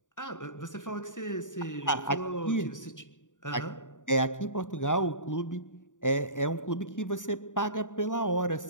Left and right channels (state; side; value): late; right; 0.87 ms